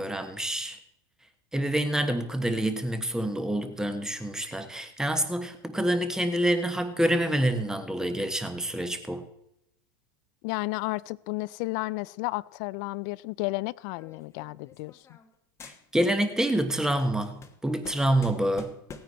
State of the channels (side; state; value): both; normal; correlation 0.73